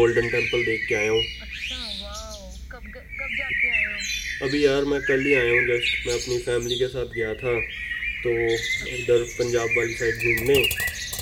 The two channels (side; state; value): both; identical; correlation 1.00